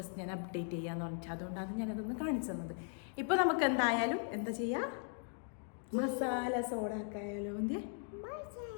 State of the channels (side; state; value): right; silent; 52 dB below the other